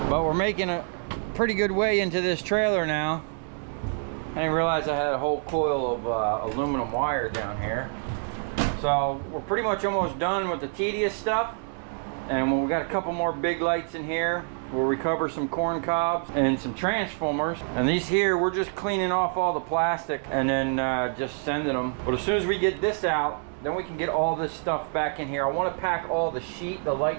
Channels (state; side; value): silent; left; 60 dB below the other